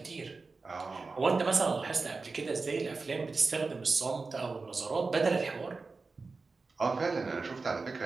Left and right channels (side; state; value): left; quieter; 4.0 dB